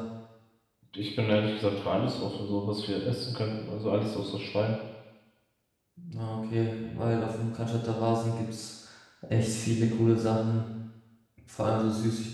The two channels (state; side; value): identical; both; correlation 1.00